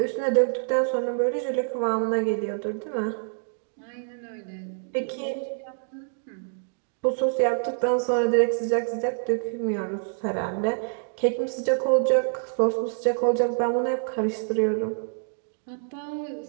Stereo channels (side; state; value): left; silent; digital silence